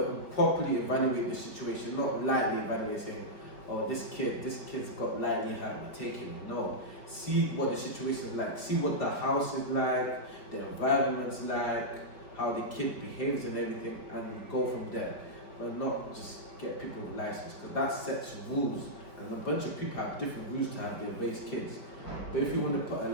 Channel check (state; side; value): late; right; 4.7 ms